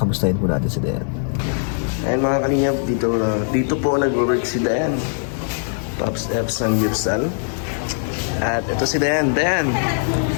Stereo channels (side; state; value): right; silent; digital silence